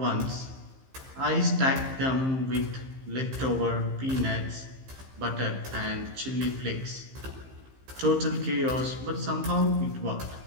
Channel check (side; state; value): left; late; 15 ms